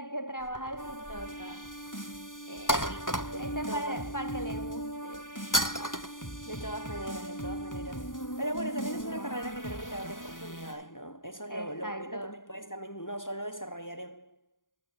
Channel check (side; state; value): right; late; 0.89 ms